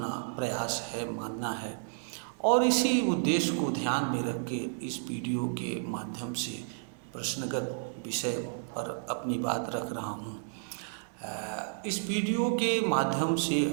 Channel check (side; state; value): left; silent; 57 dB below the other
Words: प्रयास है, मानना है। और इसी उद्देश्य को ध्यान में रख के इस वीडियो के माध्यम से प्रश्नगत विषय पर अपनी बात रख रहा हूँ। इस वीडियो के माध्यम से